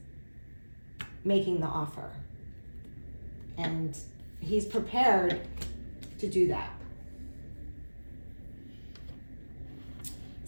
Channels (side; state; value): both; inverted; correlation -1.00